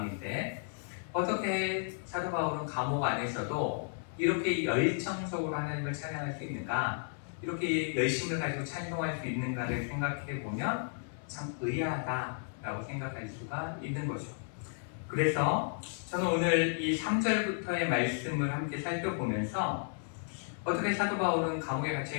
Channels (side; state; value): right; silent; 55 dB below the other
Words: 어떻게 사도 바울은 감옥 안에서도 이렇게 열정적으로 하나님을 찬양할 수 있는가 이렇게 열심을 가지고 찬송할 수 있는가를 생각해 보면 참 의아하다라고 생각할 수가 있는 거죠. 그래서 저는 오늘 이 3절부터의 말씀을 함께 살펴보면서 어떻게 사도 바울은 감옥에